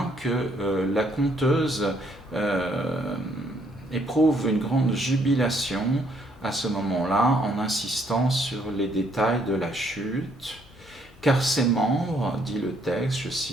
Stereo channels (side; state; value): both; normal; correlation 0.69